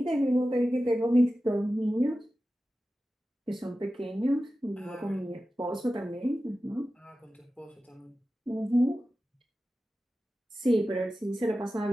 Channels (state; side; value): normal; both; correlation 0.94